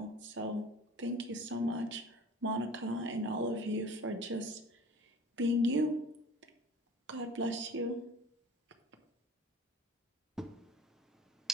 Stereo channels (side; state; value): both; normal; correlation 0.43